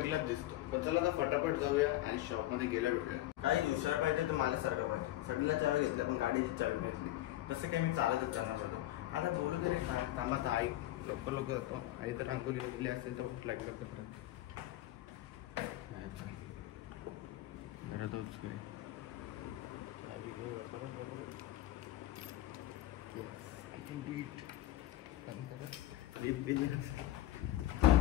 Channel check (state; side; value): quieter; right; 15.1 dB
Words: दिसतो पण चला आता फटाफट जाऊया आणि शॉपमध्ये गेल्या भेटूया काही दुसऱ्या पाहिजे तर मला सारखं पाहिजे सगळ्याला चावी घेतल्या पण गाडीची चावी घेतली तसं काही मी चालतच जाणार होतो आता थोडं तरी काय थांबा आई लवकर जातो आई तर रांगोली गेली असेल तर भूक लागली लवकर घरातच चावी लिप